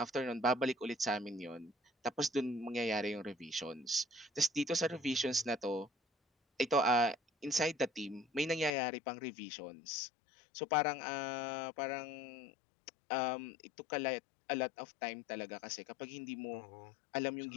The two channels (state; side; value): drops out; right; at 8.7 s